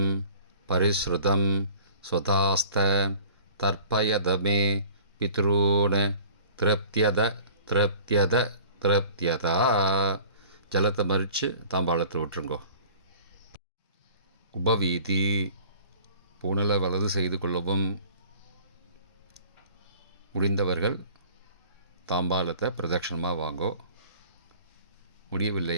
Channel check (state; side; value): inverted; both; correlation -0.47